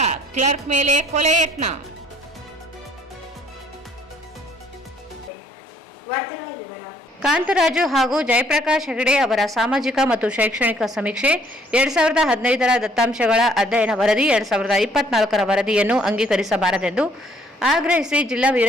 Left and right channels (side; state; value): both; normal; correlation 0.63